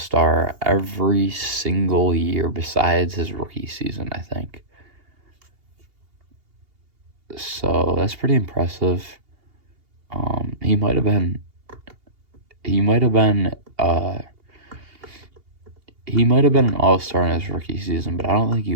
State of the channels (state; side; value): late; left; 2.8 ms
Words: every single year besides his rookie season, I think. So that's pretty impressive. He might have been an All-Star in his rookie season, but I don't think